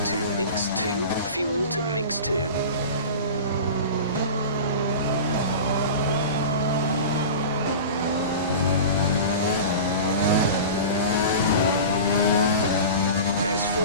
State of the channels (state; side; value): inverted; both; correlation -0.33